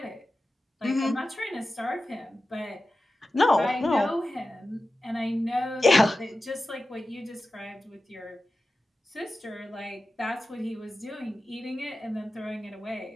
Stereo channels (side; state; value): both; normal; correlation 0.94